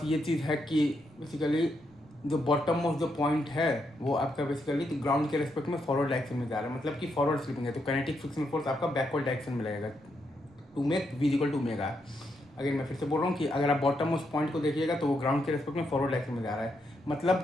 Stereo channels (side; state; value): both; normal; correlation 0.80